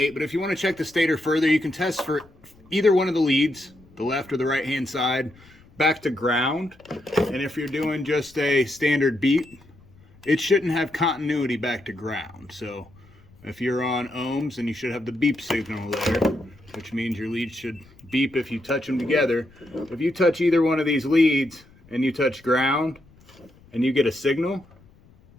but if you want to check the stator further, you can test for either one of the leads, the left or the right hand side, back to ground. And if you're doing just a standard beep, it shouldn't have continuity back to ground. So if you're on ohms, then you should have the beep signal there, which means your leads should beep if you touch them together. If you touch either one of these leads and you touch ground and you get a signal,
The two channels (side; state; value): left; noise; rumble, 27 dB below the sound